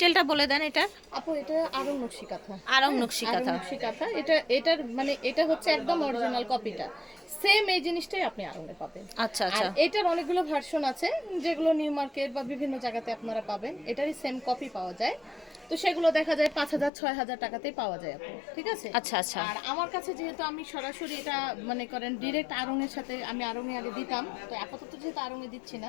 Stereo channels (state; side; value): drops out; right; at 16.9 s